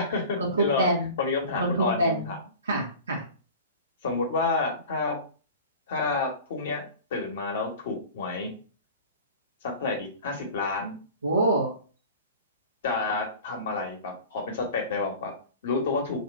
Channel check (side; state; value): both; inverted; correlation -0.38